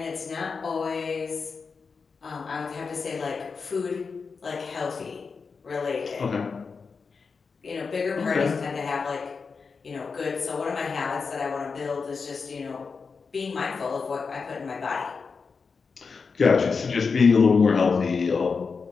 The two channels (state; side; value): quieter; right; 5.0 dB